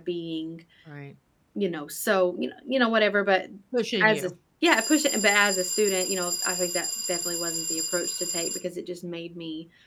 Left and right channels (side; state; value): both; identical; correlation 1.00